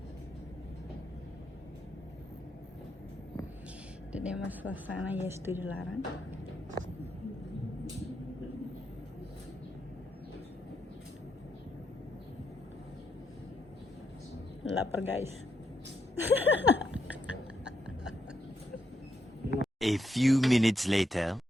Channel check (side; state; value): both; normal; correlation 0.79